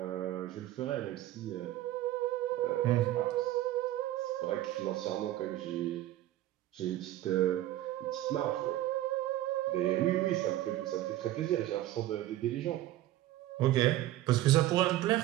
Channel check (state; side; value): quieter; left; 14.7 dB